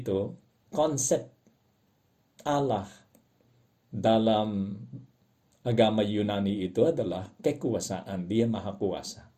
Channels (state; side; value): identical; both; correlation 1.00